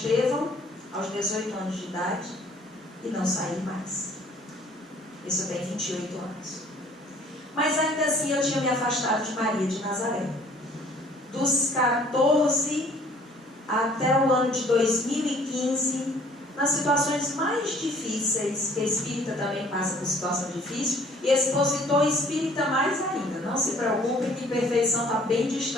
aos 18 anos de idade, e não saí mais. Isso eu tenho 28 anos. Mas ainda assim eu tinha me afastado de Maria de Nazaré. Dos 14 até o ano de 2015, nas situações mais difíceis, que a espírita também passa por situação difícil, e expositor espírita mais ainda. Não se preocupe que perfeição está bem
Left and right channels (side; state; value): both; normal; correlation 0.56